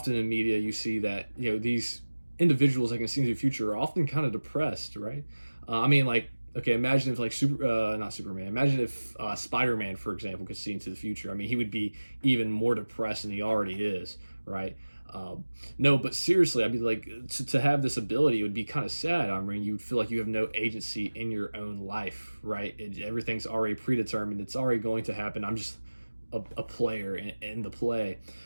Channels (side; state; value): both; inverted; correlation -1.00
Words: in media you see that, these individuals that can see into the future are often kind of depressed, right? Okay, imagine if not Superman. Imagine if Spider-Man, for example, could see into the future. I mean, he would be even more depressed than he already is, right? No, but seriously, I'd be like, to have this ability, it would be kind of sad. I mean, you'd feel like you have no agency in your own life, right? Everything's already predetermined. It's already going to happen. I'm just a player in the play.